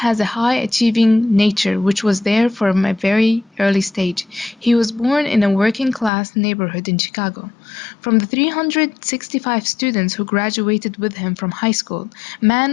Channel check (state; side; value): drops out; right; at 6.1 s